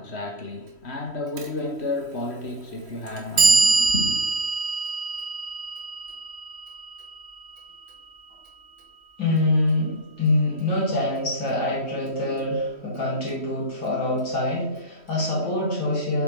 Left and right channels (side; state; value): right; late; 3.1 ms